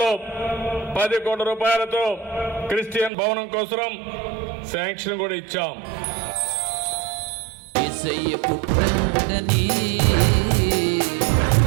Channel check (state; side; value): drops out; left; at 3.1 s